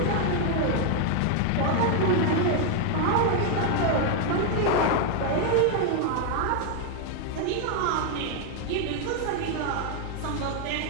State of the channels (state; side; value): different; both; correlation 0.01